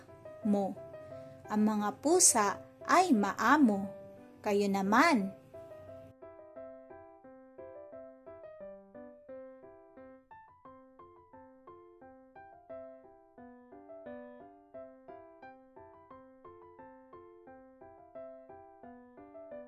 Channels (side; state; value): both; identical; correlation 1.00